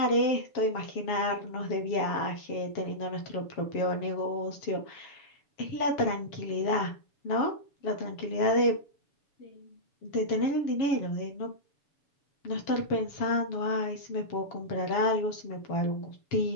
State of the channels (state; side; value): late; right; 7.3 ms